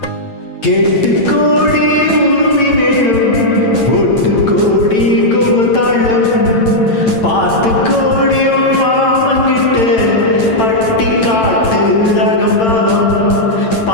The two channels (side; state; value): right; late; 8.9 ms